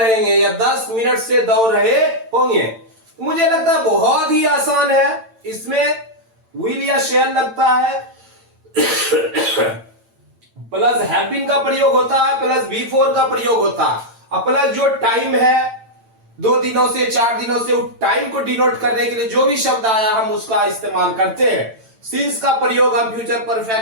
या 10 मिनट से दौड़ रहे होंगे। मुझे लगता है बहुत ही आसान है, इसमें विल या शैल लगता है, प्लस हैव बीन का प्रयोग होता है, प्लस B4 का प्रयोग होता है, और प्लस जो टाइम है 2 दिनों से 4 दिनों से, उस टाइम को डिनोट करने के लिए जो भी शब्द आया हम उसका इस्तेमाल करते हैं। सिंस का प्रयोग हम फ्यूचर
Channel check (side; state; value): left; late; 8.9 ms